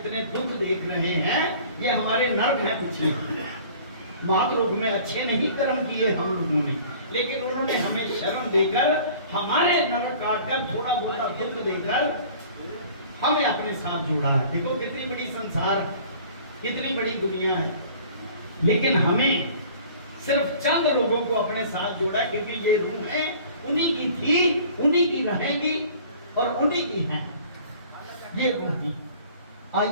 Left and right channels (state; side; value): inverted; both; correlation -0.48